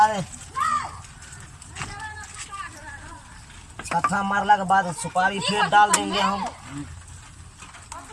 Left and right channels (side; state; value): both; identical; correlation 1.00